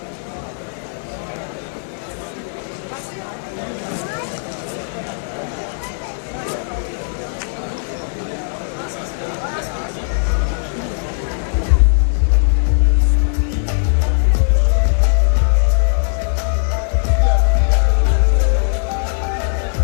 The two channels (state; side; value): silent; right; digital silence